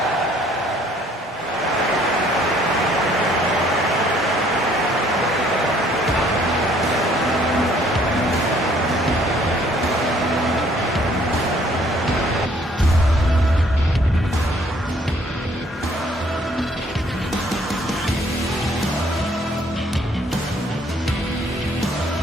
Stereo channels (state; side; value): normal; both; correlation 0.62